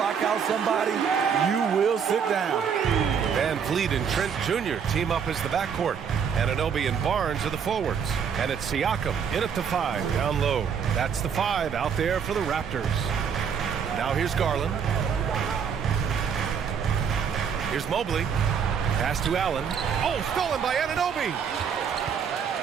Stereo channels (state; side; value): quieter; left; 7.1 dB